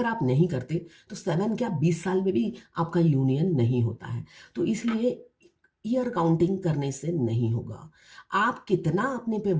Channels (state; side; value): identical; both; correlation 1.00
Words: आप नहीं करते तो 7 क्या 20 साल में भी आपका यूनियन नहीं होता है। तो इसलिए ईयर काउंटिंग करने से नहीं होगा, आप कितना अपने पे